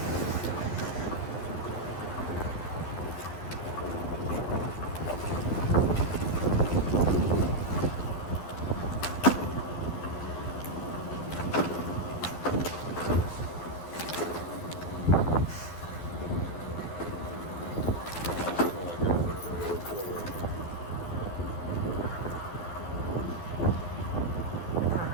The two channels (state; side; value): late; right; 11 ms